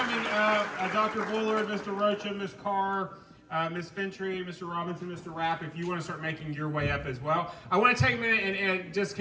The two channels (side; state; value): both; identical; correlation 1.00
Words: up, Dr. Bullard, Mr. Rocha, Ms. Carr, Ms. Fintry, Mr. Robinson, Mr. Rapp, if you want to start making your way up as well. I want to take a minute and just